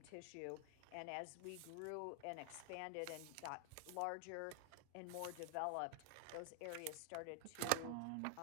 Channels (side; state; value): both; different; correlation 0.00